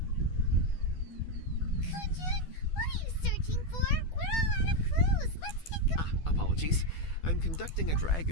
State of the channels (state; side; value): late; right; 12 ms